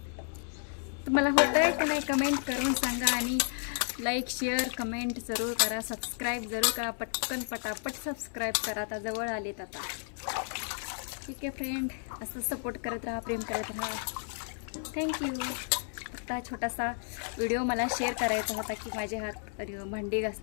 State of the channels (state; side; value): silent; right; 56 dB below the other